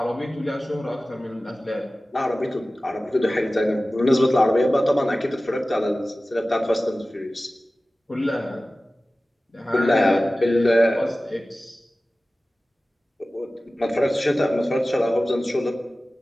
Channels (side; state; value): both; normal; correlation 0.96